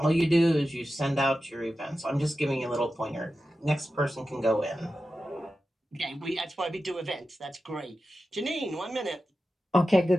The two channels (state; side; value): normal; both; correlation 0.92